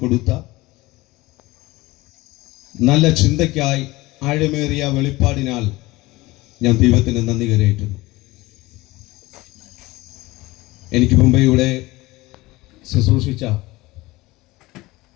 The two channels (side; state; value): right; quieter; 20.2 dB